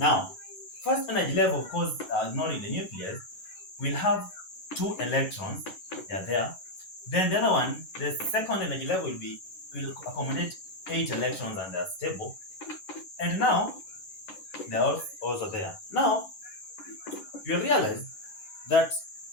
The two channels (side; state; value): right; late; 11 ms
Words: first energy level, of course, ignoring the nucleus, will have 2 electrons. They are there. Then the other one, the second energy level will accommodate 8 electrons and they are stable. And now they are also there. Now you realize that